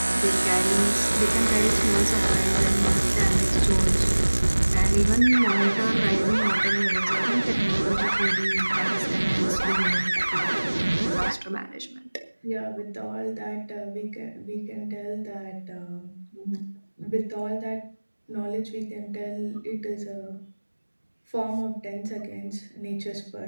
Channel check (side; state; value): both; inverted; correlation -1.00